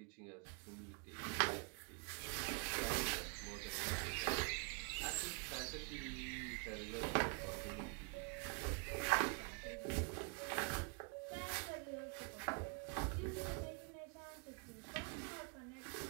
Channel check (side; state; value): left; quieter; 36.4 dB